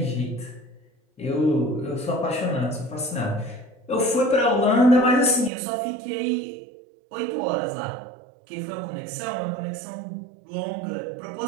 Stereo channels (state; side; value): drops out; left; at 5.5 s